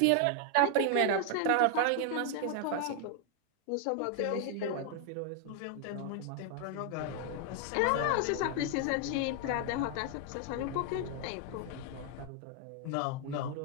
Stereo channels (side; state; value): both; different; correlation 0.00